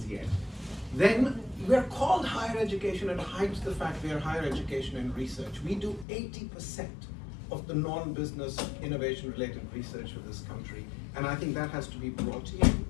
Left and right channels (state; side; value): drops out; right; at 6.1 s